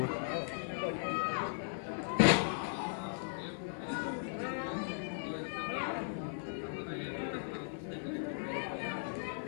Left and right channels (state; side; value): silent; right; 53 dB below the other